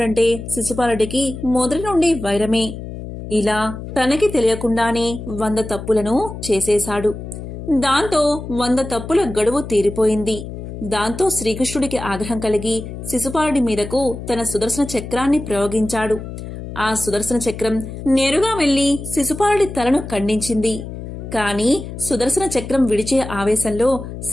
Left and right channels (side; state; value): left; noise; hum, 10 dB below the sound